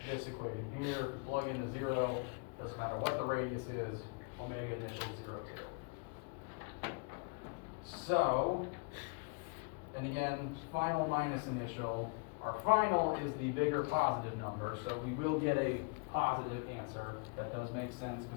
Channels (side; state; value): right; quieter; 32.2 dB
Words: this equation here. If we plug in a 0, doesn't matter what the radius is, omega initial 0, 0. So, and again, final minus initial. Our final is the bigger positive number, so we will get a positive answer. That does make sense